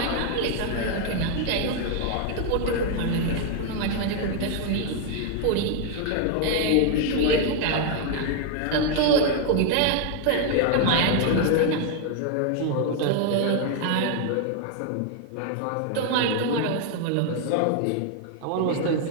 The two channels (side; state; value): both; different; correlation 0.00